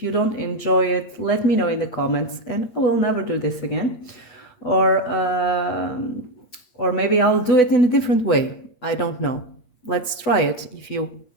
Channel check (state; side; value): late; right; 8.5 ms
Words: you don't enjoy it, let me know in the comments and I will never do this again. Or maybe I'll do it in a different way. I don't know. Let's try it if you